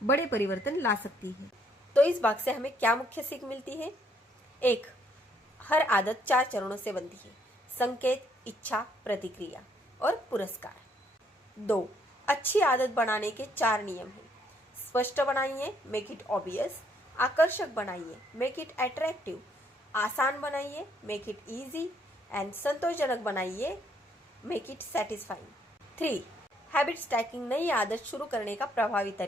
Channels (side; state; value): both; normal; correlation 0.68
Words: बड़े परिवर्तन ला सकती है। तो इस भाग से हमें क्या मुख्य सीख मिलती है? 1. हर आदत 4 चरणों से बनती है: संकेत, इच्छा, प्रतिक्रिया और पुरस्कार। 2. अच्छी आदत बनाने के 4 नियम हैं: स्पष्ट बनाइए, मेक इट ऑब्वियस; आकर्षक बनाइए, मेक इट अट्रैक्टिव; आसान बनाइए, मेक इट इजी; एंड संतोषजनक बनाइए, make it satisfying. 3. Habit stacking नई आदत शुरू करने का प्रभावी